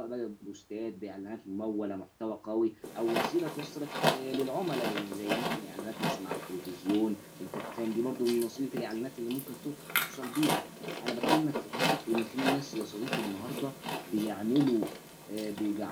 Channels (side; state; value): both; identical; correlation 1.00